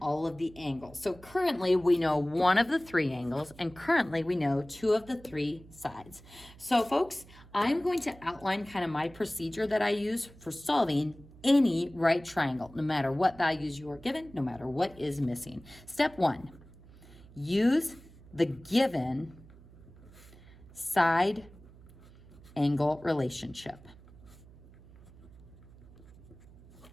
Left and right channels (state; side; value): noise; right; hum, 22 dB below the sound